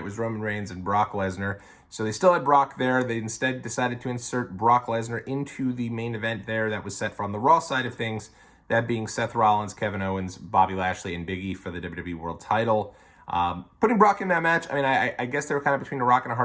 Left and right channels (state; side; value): identical; both; correlation 1.00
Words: was Roman Reigns and Brock Lesnar. So they still had Brock there. They instead decided to insert Brock Lesnar into the main event there that was set for on the Raw side of things, that being Seth Rollins, Kevin Owens, Bobby Lashley, and Big E for the WWE World title. Putting Brock in that match, I guess they were kind of between a rock and a